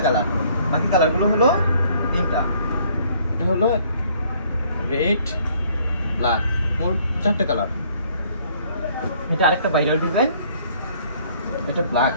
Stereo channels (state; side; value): inverted; both; correlation -0.61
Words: কালার, বাকি কালারগুলো হলো ৩টা। এটা হলো রেড, ব্ল্যাক, মোট ৪টা কালার। এটা আরেকটা ভাইরাল ডিজাইন, এটা ব্ল্যাক